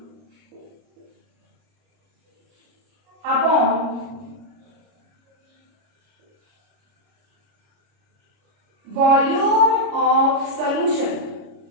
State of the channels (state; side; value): late; left; 29 ms